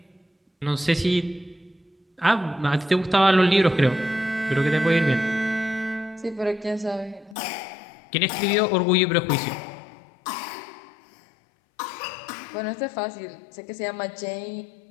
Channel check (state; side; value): drops out; right; at 7.4 s